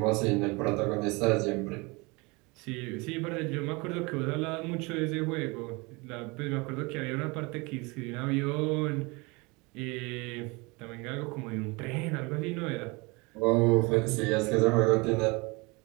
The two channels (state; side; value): quieter; left; 26.6 dB